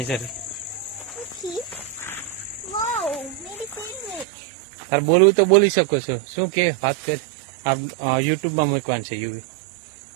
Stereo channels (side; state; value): left; drops out; at 4.2 s